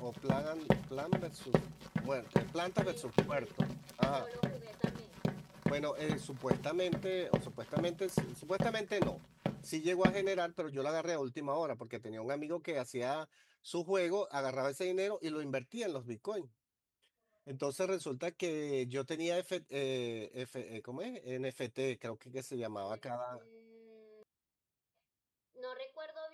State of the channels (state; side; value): identical; both; correlation 1.00